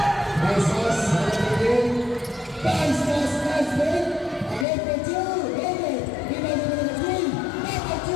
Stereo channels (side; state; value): right; drops out; at 4.7 s